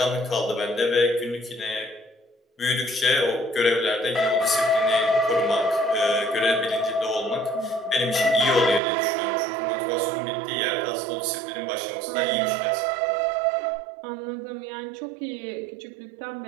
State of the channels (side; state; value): left; drops out; at 8.8 s